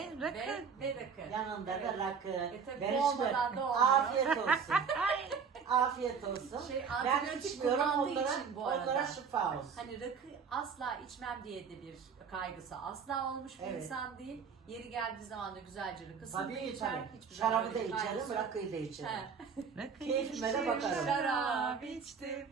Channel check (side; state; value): left; quieter; 6.1 dB